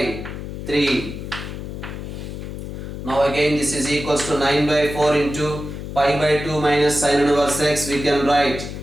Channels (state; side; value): noise; left; hum, 8 dB below the sound